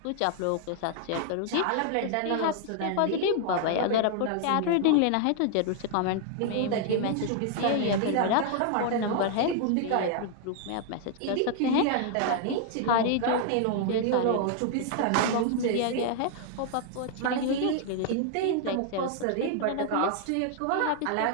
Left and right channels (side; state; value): both; different; correlation 0.00